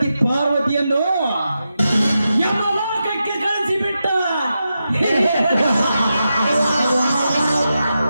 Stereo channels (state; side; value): inverted; both; correlation -0.89